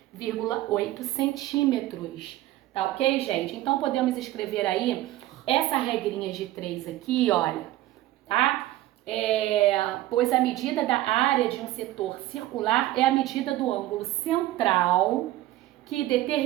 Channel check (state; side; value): quieter; left; 15.5 dB